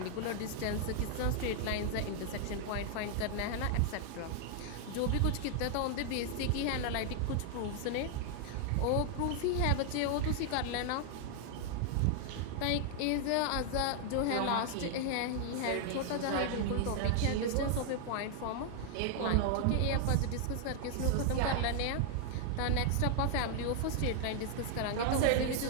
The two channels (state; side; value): different; both; correlation 0.00